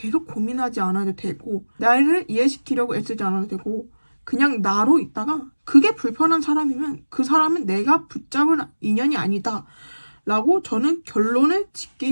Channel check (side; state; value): both; inverted; correlation -1.00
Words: 고민하지 않아도 되고 나를 이해시키려고 애쓰지 않아도 되고 그냥 나로 있다가 그게 불편한 사람이면 그 사람은 내가 붙잡을 인연이 아니다 라고 저는 결론을